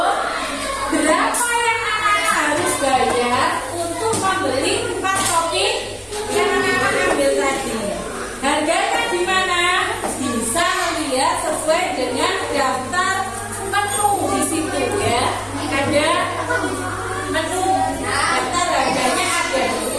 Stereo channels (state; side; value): identical; both; correlation 1.00